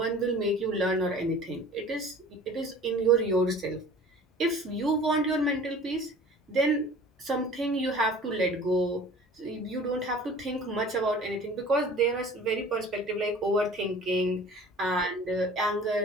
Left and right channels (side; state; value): both; normal; correlation 0.45